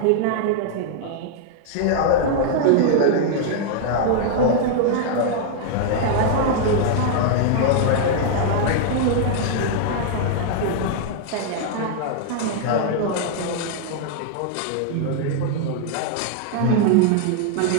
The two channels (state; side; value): different; both; correlation -0.01